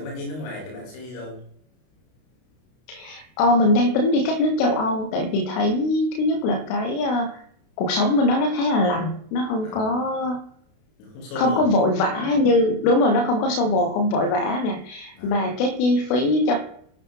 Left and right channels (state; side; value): late; right; 32 ms